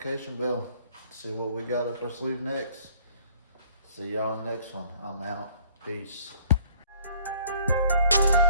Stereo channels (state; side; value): inverted; both; correlation -0.58